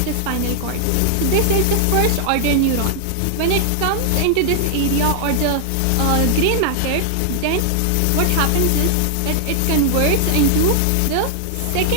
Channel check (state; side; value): different; both; correlation 0.00